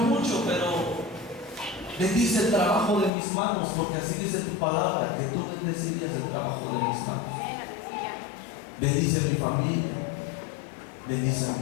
mucho, pero bendice el trabajo de mis manos, porque así dice tu palabra, que tú bendecirías el trabajo de mis manos. Bendice mi familia, bendice a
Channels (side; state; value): right; drops out; at 3.1 s